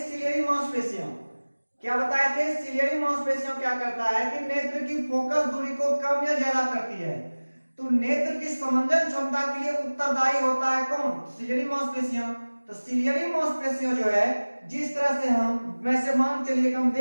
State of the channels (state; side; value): inverted; both; correlation -1.00